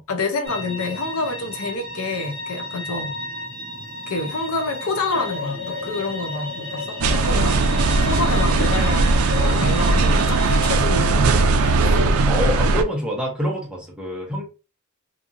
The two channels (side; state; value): both; normal; correlation 0.43